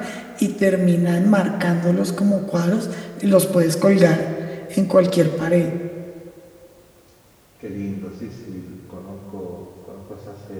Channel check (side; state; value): both; identical; correlation 1.00